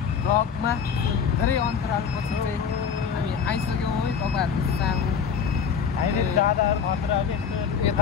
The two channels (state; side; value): quieter; right; 6.8 dB